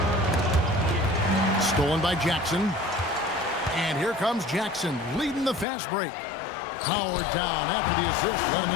Stolen by Jackson. And here comes Jackson leading the fast break. Powered down after the assist, let him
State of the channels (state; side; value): drops out; right; at 5.7 s